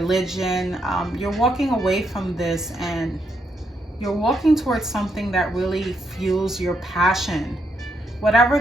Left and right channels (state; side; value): normal; both; correlation 0.78